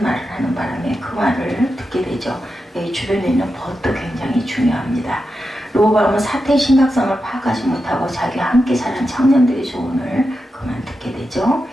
말을 하는 바람에 그 말을 듣게 되죠. 여기 주변에 있는 벗도 굉장히 중요합니다. 르호보암은 사태의 심각성을 파악하지 못하고 자기와 함께 자란 청년들의 조언을 그만 듣게 되죠.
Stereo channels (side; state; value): both; normal; correlation 0.89